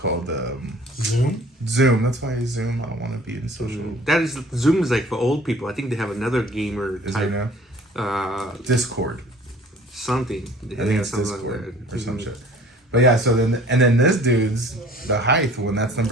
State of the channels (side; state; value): both; normal; correlation 0.50